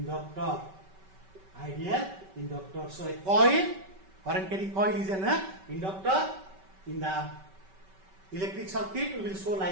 Ideal inductor. So a coil, current carrying coil is an inductor. In the electric circuit, we will show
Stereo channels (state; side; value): late; left; 5.2 ms